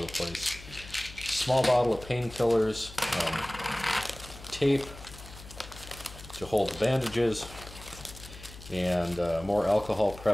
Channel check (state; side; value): noise; left; hum, 16 dB below the sound